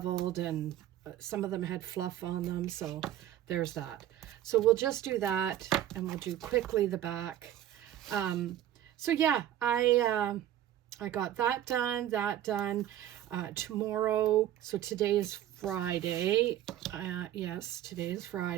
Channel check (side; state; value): left; quieter; 12.2 dB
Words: and some of them had fluff on them. So there's that. So we'll just do that, and we'll do quickly the back. So yeah, I got that done, tomorrow. So today is Friday. Yes, today is